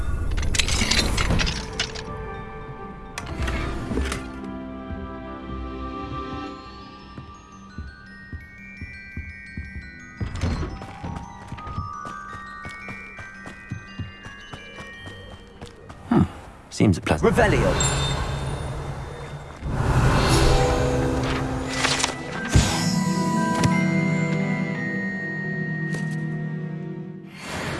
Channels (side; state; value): both; identical; correlation 1.00